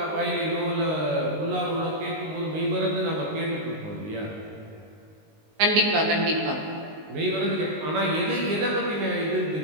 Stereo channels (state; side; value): late; left; 19 ms